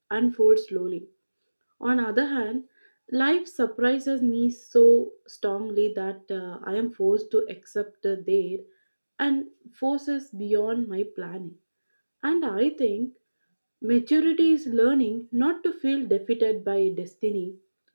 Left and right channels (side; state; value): both; inverted; correlation -1.00